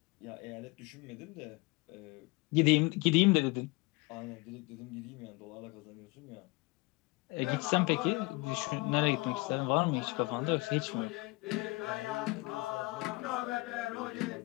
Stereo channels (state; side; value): quieter; right; 24.8 dB